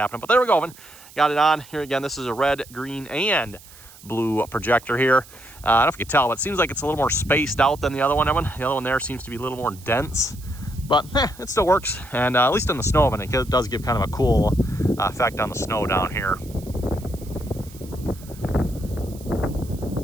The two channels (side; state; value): right; noise; hiss, 21 dB below the sound